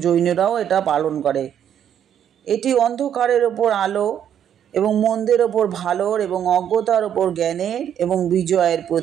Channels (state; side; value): quieter; left; 9.4 dB